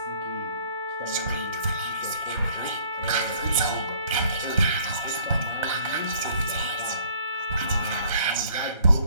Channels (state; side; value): inverted; both; correlation -0.58